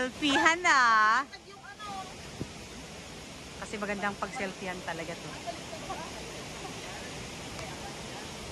na. Kasi magandang pag-selfiehan talaga to.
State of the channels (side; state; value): both; identical; correlation 1.00